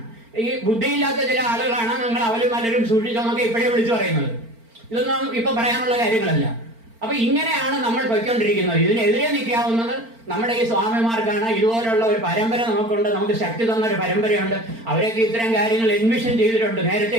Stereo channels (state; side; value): late; left; 4.4 ms